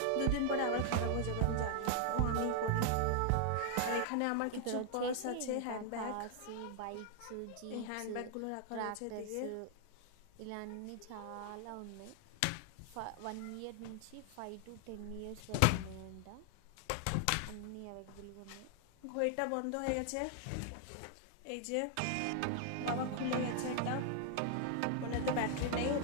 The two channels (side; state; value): both; different; correlation 0.00